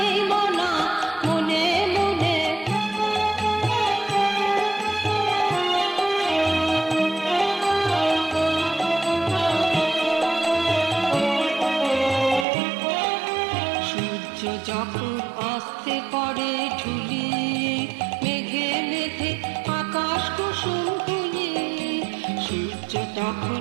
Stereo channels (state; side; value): drops out; left; at 12.5 s